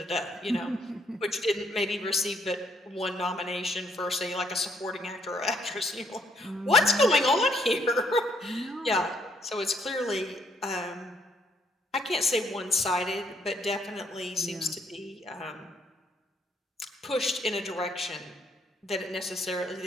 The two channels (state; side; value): normal; both; correlation 0.70